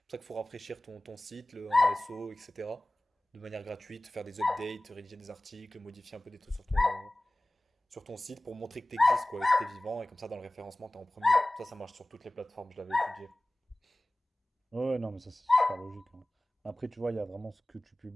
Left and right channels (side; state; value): both; normal; correlation 0.98